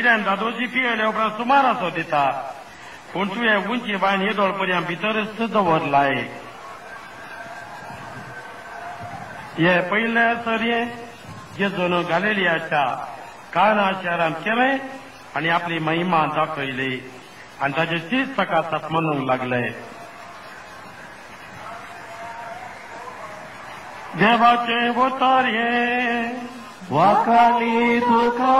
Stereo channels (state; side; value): identical; both; correlation 1.00